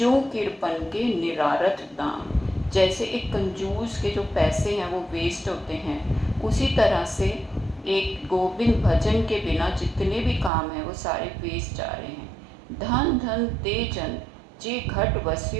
किरपन के निरारथ दाम, जैसे एक कंजूस के जो पैसे हैं वो वेस्ट होते हैं, उसी तरह से एक गोविंद भजन के बिना जितने भी काम हैं वो सारे वेस्ट जा रहे हैं। धन धन ते जन जे घट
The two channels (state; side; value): drops out; left; at 10.5 s